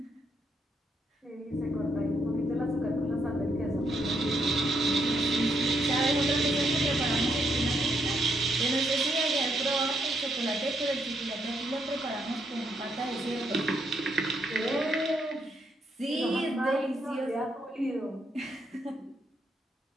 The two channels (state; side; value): normal; both; correlation 0.77